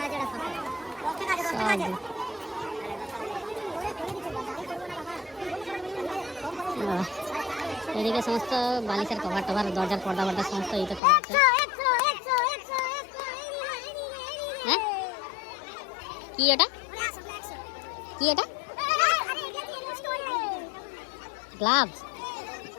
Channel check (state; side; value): drops out; right; at 11.0 s